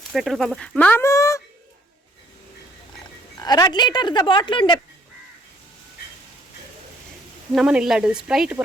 ಪೆಟ್ರೋಲ್ ಪಂಪ್ ಮಾಮೂ 2 ಲೀಟರ್ದ ಬಾಟ್ಲ್ ಉಂಡೆ ನಮ್ಮನೆಲ್ಲಡು ಸ್ಪ್ರೈಟ್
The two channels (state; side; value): normal; both; correlation 0.64